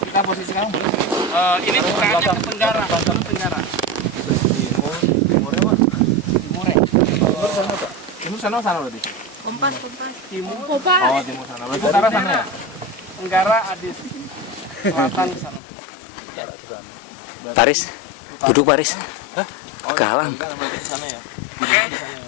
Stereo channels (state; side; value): drops out; right; at 15.6 s